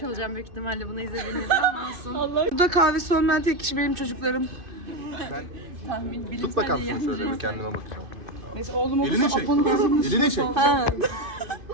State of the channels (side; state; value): left; late; 2.5 ms